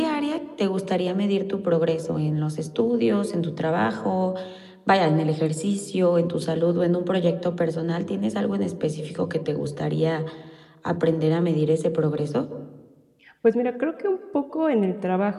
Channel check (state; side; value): identical; both; correlation 1.00